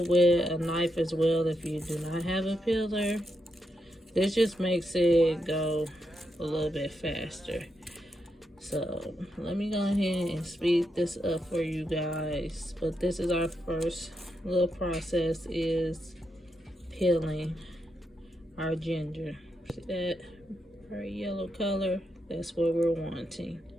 it with a knife as well if you do not have a peeler. This just makes it go a little bit faster. So let me go ahead and speed this up for you guys. But this is our first little process, is peeling our ginger. See that very yellow color? That's what we're wanting.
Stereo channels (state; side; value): normal; both; correlation 0.83